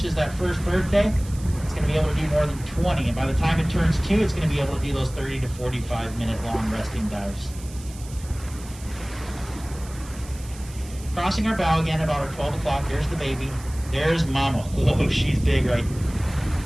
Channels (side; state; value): right; noise; hiss, 18 dB below the sound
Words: that first birthday, it's going to be able to do more than 20. And by the time it turns 2, it's going to be able to do those 30 to 45 minute long resting dives. Crossing our bow again about our 12 o'clock. There's the baby. There's mama. Whoa, she's big, right?